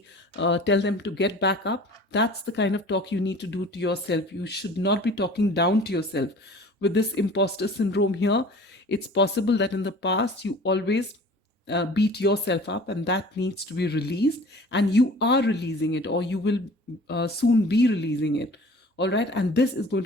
tell them to get back up, that's the kind of talk you need to do to yourself. You should not be talking down to yourself. With this imposter syndrome here, it's possible that in the past you always beat yourself up, and that needs to be released, and you are releasing it, or you will soon be releasing it. All right, and this is going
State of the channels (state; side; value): normal; both; correlation 0.45